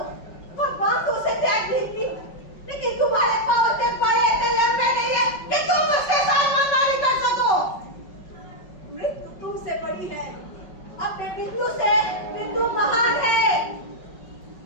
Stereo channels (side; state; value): right; late; 5.4 ms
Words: भगवान तो उसे त्याग नहीं की, लेकिन तुम्हारे पांव इतने बड़े इतने लंबे नहीं है कि तुम उसके साथ मनमानी कर सको। मृत्यु तुमसे बड़ी है, अपने बिंदु से बिंदु महान है।